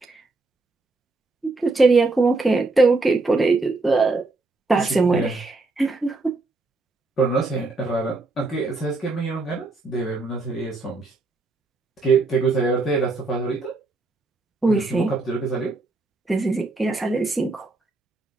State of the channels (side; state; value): left; quieter; 3.4 dB